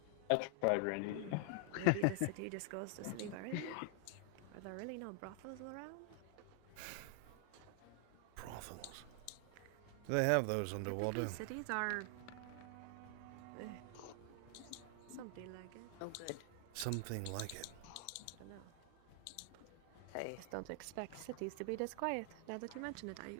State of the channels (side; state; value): both; different; correlation 0.00